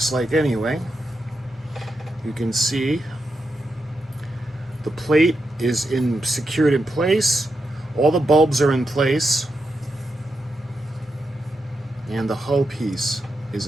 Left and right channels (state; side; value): normal; both; correlation 0.86